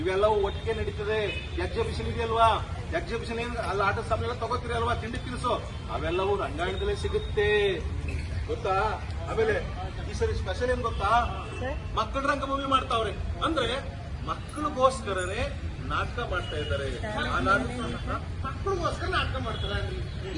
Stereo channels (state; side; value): identical; both; correlation 1.00